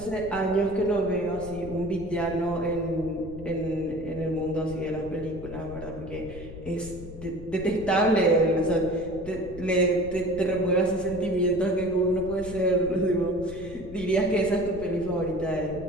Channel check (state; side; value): noise; left; rumble, 13 dB below the sound